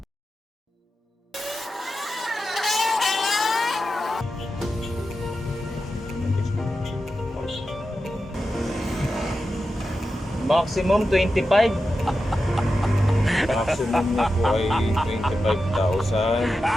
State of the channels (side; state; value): both; normal; correlation 0.90